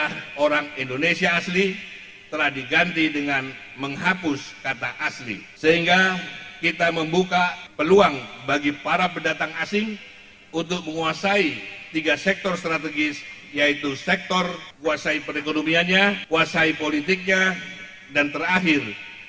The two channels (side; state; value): both; identical; correlation 1.00